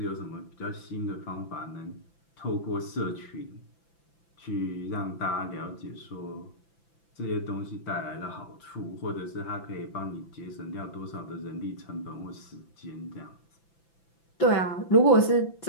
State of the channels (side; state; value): right; late; 5.9 ms